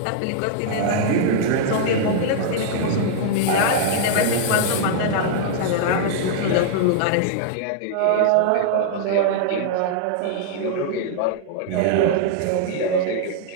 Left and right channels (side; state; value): both; different; correlation -0.01